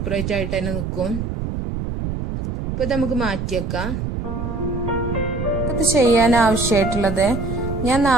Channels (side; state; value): right; noise; rumble, 4 dB below the sound